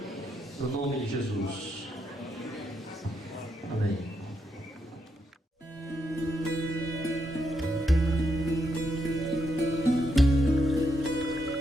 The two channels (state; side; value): normal; both; correlation 0.80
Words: no nome de Jesus. Amém.